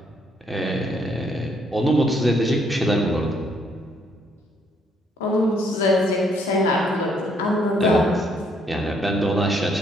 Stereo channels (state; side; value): normal; both; correlation 0.69